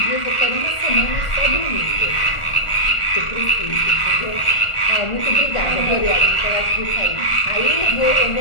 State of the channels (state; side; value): late; right; 1.4 ms